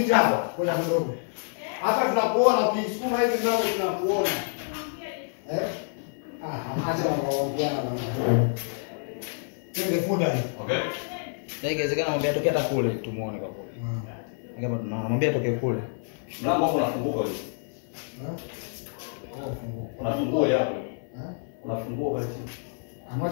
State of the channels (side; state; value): right; silent; 60 dB below the other